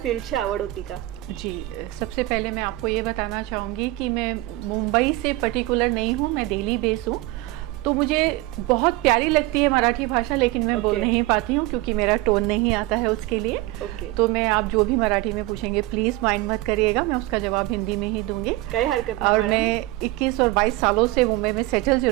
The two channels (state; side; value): quieter; left; 18.9 dB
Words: फील्डची आवड होती का? जी, सबसे पहले मैं आपको ये बताना चाहूँगी कि मैं मुंबई से पर्टिकुलर नहीं हूँ, मैं दिल्ली बेस हूँ। तो मुझे बहुत प्यारी लगती है मराठी भाषा, लेकिन मैं बोल नहीं पाती हूँ क्योंकि मेरा टोन नहीं आता है उसके लिए। तो मैं आप जो भी मराठी में पूछेंगे प्लीज़ माइंड मत करिएगा, मैं उसका जवाब हिंदी में ही दूंगी। कोई हरकत नहीं। और मैं 21 और 22 सालों से मुंबई में सेटल